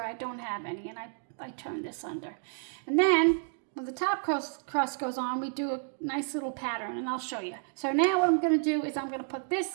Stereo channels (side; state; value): left; silent; 57 dB below the other